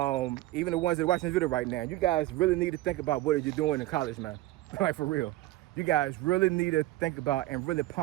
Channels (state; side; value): quieter; left; 16.9 dB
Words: even the ones that are watching this video right now, you guys really need to think about what you're doing in college, man. Like, for real. You guys really need to think about and really